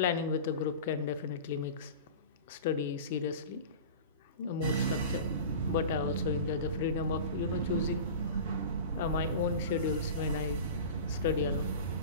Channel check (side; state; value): both; inverted; correlation -0.33